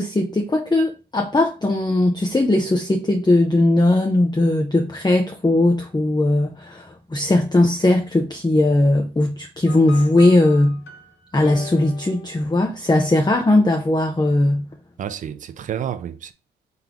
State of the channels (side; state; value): both; normal; correlation 0.88